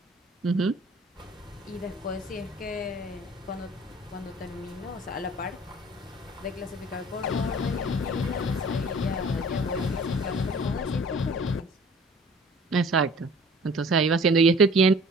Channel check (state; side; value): normal; both; correlation 0.49